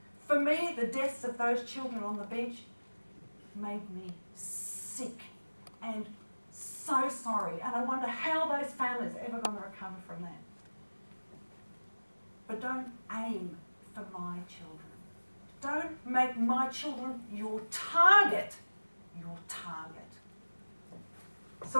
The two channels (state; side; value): inverted; both; correlation -1.00